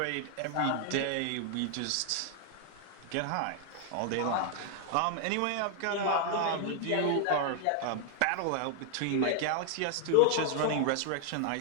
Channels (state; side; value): different; both; correlation 0.00